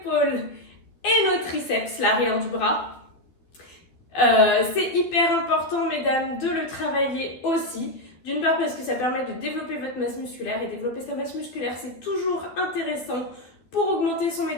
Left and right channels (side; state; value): right; late; 12 ms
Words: et nos triceps, l'arrière du bras. C'est hyper important, mesdames, de le travailler aussi. D'une part parce que ça permet de développer votre masse musculaire, et développer sa masse musculaire, c'est toujours intéressant pour augmenter son